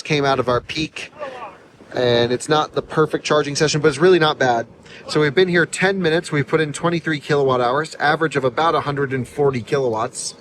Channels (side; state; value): both; identical; correlation 1.00